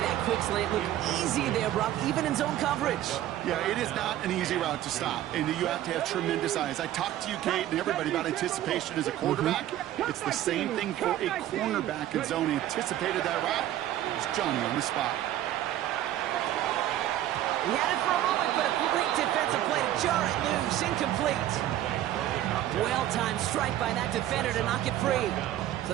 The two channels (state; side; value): quieter; left; 12.9 dB